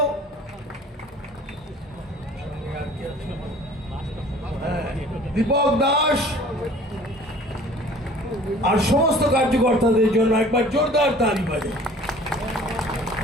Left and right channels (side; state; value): both; normal; correlation 0.48